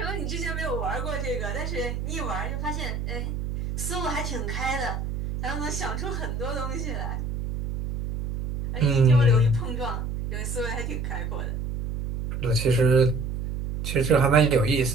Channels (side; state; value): right; noise; hum, 4 dB below the sound